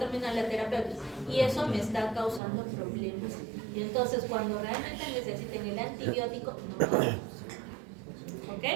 la terapia, y eso me está causando problemas. Y entonces cuando realmente necesiten el antibiótico, no lo damos. ¿Ok?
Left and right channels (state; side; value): drops out; left; at 2.4 s